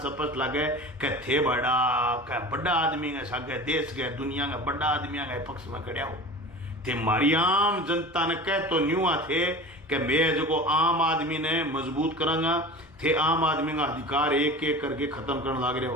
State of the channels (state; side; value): normal; both; correlation 0.35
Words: सपस लगे कि थे बड़ा आदमी के सगे देश के दुनिया का बड़ा आदमी के पक्ष में खड़ा हो थे मारी आम जनता ने कह तो न्यू थे कि मैं जो आम आदमी ने मजबूत करांगा थे आम आदमी का अधिकार एक एक करके खत्म करने लग रहे